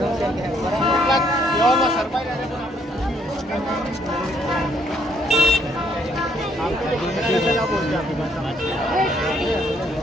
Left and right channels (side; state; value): both; normal; correlation 0.68